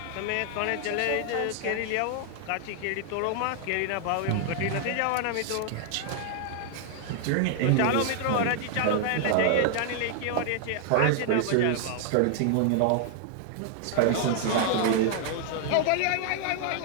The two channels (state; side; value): different; both; correlation 0.00